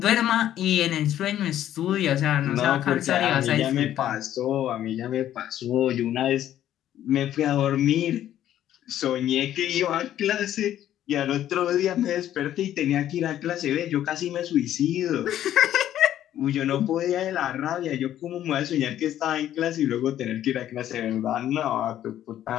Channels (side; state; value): right; quieter; 11.8 dB